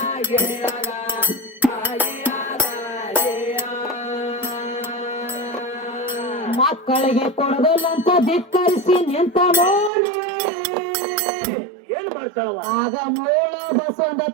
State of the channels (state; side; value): drops out; left; at 9.9 s